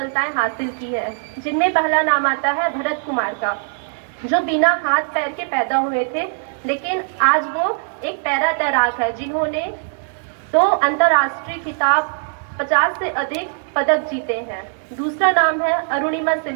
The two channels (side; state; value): left; silent; digital silence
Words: हासिल की है, जिनमें पहला नाम आता है भरत कुमार का, जो बिना हाथ पैर के पैदा हुए थे, लेकिन आज वो एक पैरा तैराक है जिन्होंने 2 अंतर्राष्ट्रीय खिताब, 50 से अधिक पदक जीते हैं। दूसरा नाम है अरुणिमा